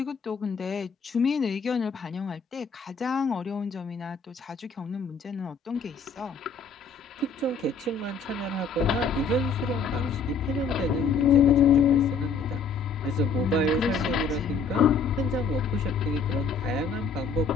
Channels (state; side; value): quieter; right; 4.9 dB